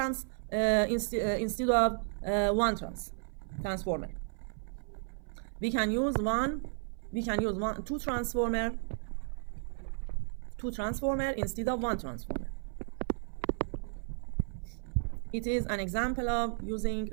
instead of one transformer. We can use two transformer instead of one transformer. It is an example of using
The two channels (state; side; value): silent; left; 55 dB below the other